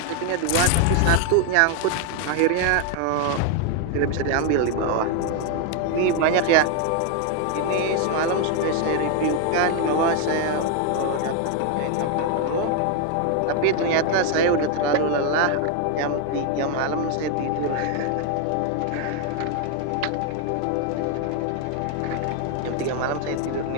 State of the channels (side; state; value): both; different; correlation 0.01